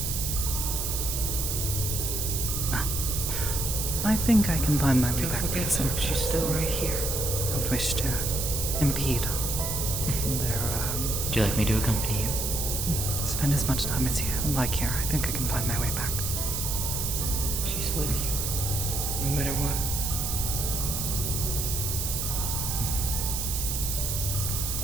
I think I can find my way Don't back to forget, the folks, center. she's still right here. Don't wish to impede their, Would you like me to accompany you? spend as much time as you like here. I think I can find my way back. She's with you, no matter what.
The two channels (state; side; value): noise; right; hiss, 1 dB below the sound